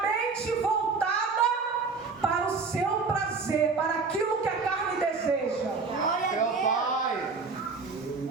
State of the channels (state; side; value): quieter; left; 4.5 dB